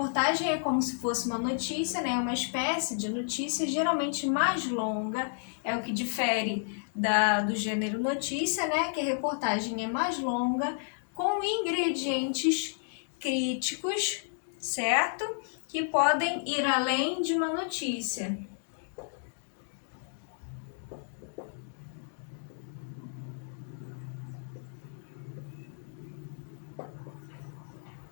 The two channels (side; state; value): right; silent; digital silence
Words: é como se fosse uma notícia, né? Uma espécie de notícia, geralmente mais longa, é o que difere do gênero notícia, né? Que a reportagem é mais longa, com ingredientes críticos, certo? Que podem ir além de uma notícia.